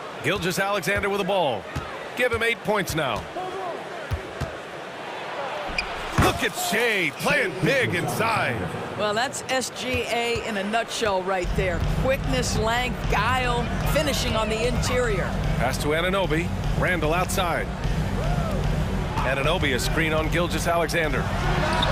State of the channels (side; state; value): both; identical; correlation 1.00